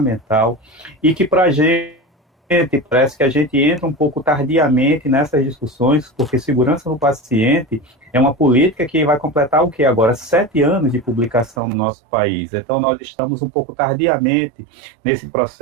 e que para a gente parece que a gente entra um pouco tardiamente nessas discussões, porque segurança do paciente é uma política que vai completar o que agora? 7 anos de publicação no nosso país. Então, nós estamos um pouco tardiamente nesse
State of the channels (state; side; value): drops out; left; at 11.6 s